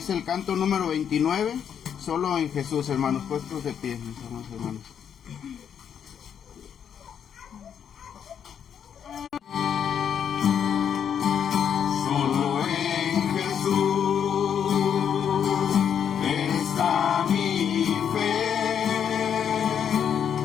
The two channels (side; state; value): right; quieter; 8.3 dB